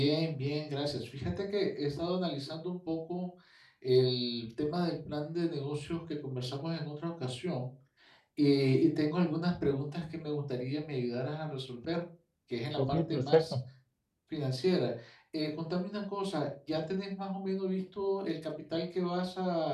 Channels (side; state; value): both; identical; correlation 1.00